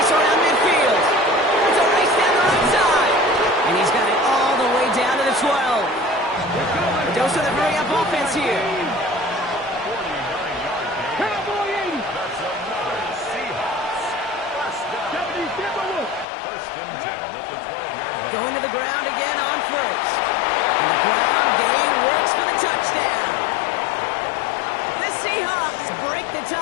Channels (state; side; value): drops out; right; at 16.2 s